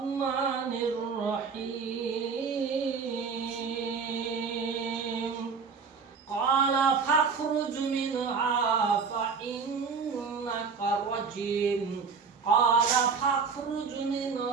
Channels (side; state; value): left; quieter; 5.5 dB